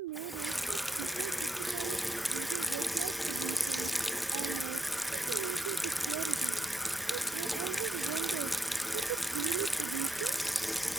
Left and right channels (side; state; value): both; normal; correlation 0.82